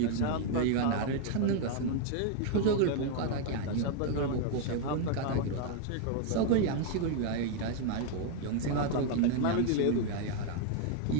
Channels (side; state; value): both; different; correlation 0.00